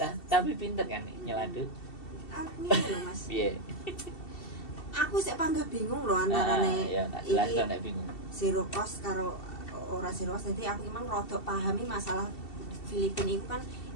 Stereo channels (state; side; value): late; right; 2.7 ms